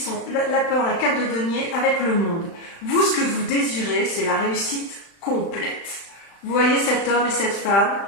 la peur, la carte de denier avec le monde. Vous, ce que vous désirez, c'est la réussite complète. Vous voyez cet homme et cette femme,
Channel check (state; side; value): late; right; 35 ms